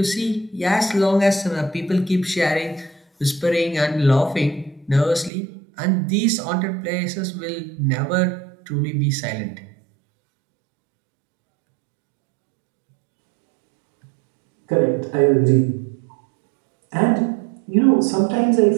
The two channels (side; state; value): left; drops out; at 5.3 s